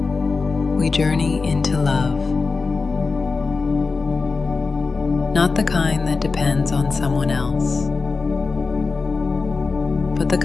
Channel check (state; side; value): quieter; right; 4.3 dB